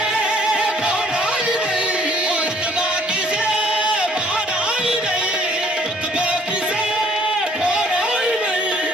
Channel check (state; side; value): normal; both; correlation 0.61